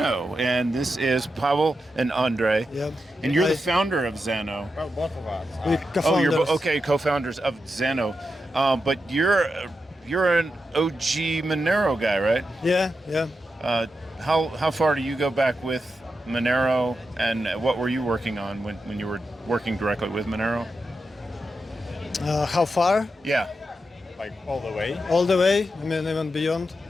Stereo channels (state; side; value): normal; both; correlation 0.88